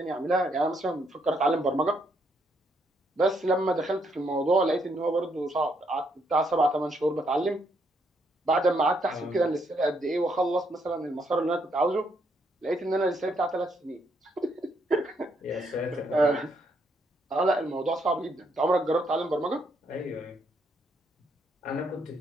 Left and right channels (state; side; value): normal; both; correlation 0.74